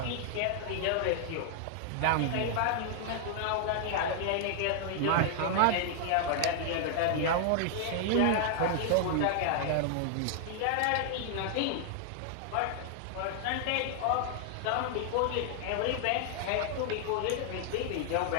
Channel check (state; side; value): different; both; correlation 0.00